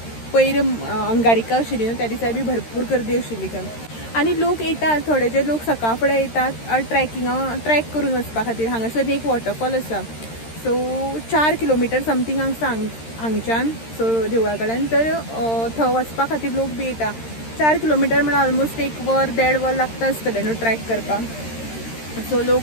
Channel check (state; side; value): late; right; 13 ms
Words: पयर अंगारिका आशिल्ली न्हू त्या दिसा बी भरपूर गर्दी आशिल्ली थंय. आनी लोक येतात थोडे जे लोक सकाळ फुडें येतात ट्रॅक करून वचपा खातीर. हांगासर एक वॉटरफॉल आसा. सो 4 किलोमिटर समथींग आसा हांगच्यान सो देवळा कडल्यान. तर थंय वचपा खातीर लोक बी येता. 4 किलोमिटर म्हळ्यार ऑलमोस्ट 1 वर 1.5 वर लागता आसतलें न्हू ट्रॅक करपाक. सो